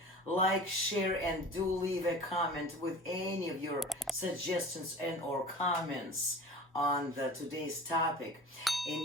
like, share, and do leave a comment with any of your suggestions and or comments on today's topic.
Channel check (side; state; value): both; normal; correlation 0.39